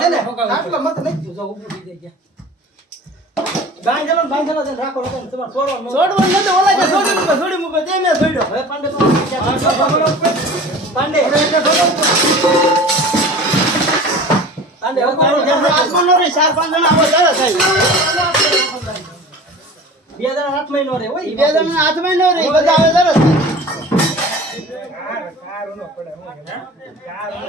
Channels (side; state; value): both; normal; correlation 0.39